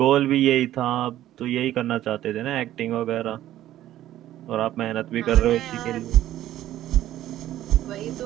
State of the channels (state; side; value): quieter; left; 13.3 dB